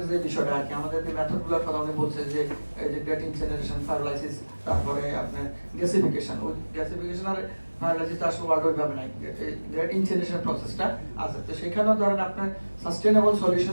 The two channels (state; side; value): inverted; both; correlation -1.00